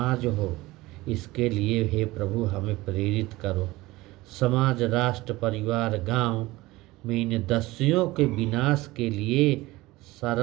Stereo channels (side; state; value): left; quieter; 19.5 dB